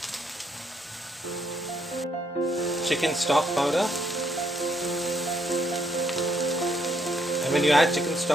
chicken stock powder. And when you add chicken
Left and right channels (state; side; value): normal; both; correlation 0.72